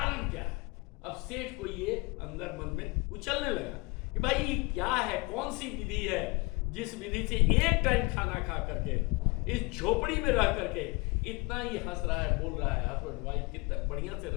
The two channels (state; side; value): quieter; right; 26.7 dB